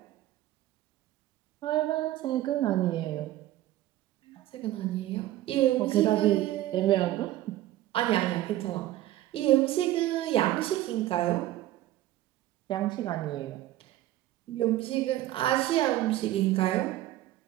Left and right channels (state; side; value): quieter; left; 14.7 dB